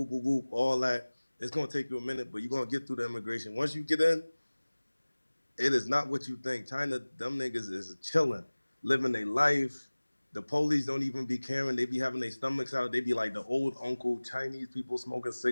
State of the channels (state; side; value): inverted; both; correlation -1.00